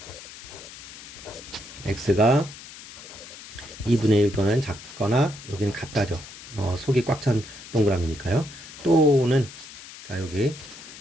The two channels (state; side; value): noise; left; hiss, 16 dB below the sound